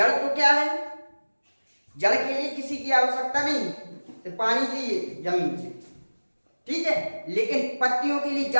तो क्या है? जड़ के लिए किसी की आवश्यकता नहीं, तो पानी चाहिए जमीन से, ठीक है। लेकिन पत्तियों के लिए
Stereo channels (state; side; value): inverted; both; correlation -1.00